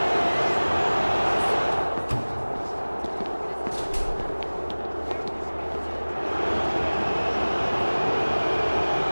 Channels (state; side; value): inverted; both; correlation -1.00